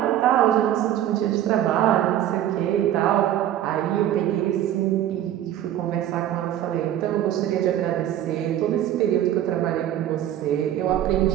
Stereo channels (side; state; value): left; quieter; 11.9 dB